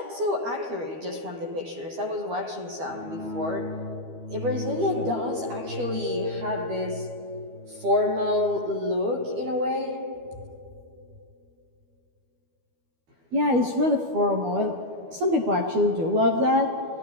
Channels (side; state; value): left; late; 12 ms